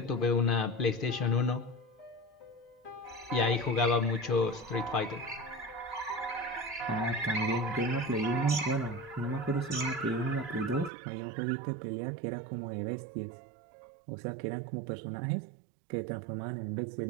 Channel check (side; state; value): left; drops out; at 10.9 s